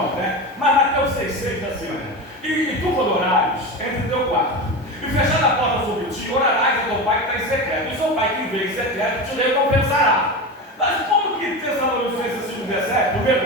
né? Mas Mateus 6,6 diz assim, olha, e tu quando orares, entre no teu quarto, e fechando a porta sobre ti, orarás a teu Pai que está em secreto, e seu Pai que vê em secreto te recompensará. Mas como que Tessalonicenses 5,17, no mesmo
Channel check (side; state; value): both; normal; correlation 0.23